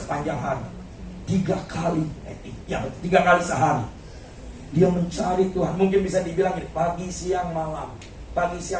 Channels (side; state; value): both; identical; correlation 1.00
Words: hari. 3 kali sehari dia mencari Tuhan. Mungkin bisa dibilang ini, pagi, siang, malam, pagi,